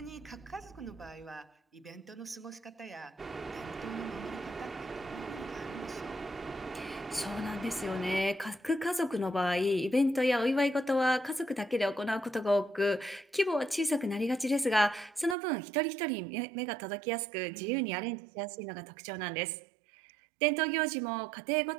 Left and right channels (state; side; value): drops out; left; at 15.4 s